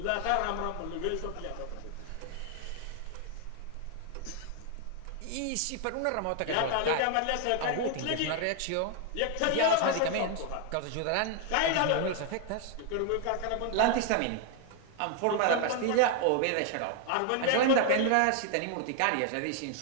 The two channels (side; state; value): both; different; correlation 0.00